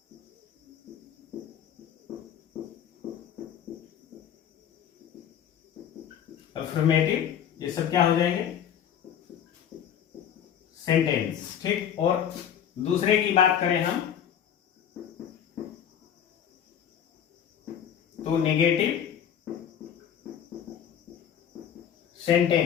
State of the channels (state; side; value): quieter; right; 9.1 dB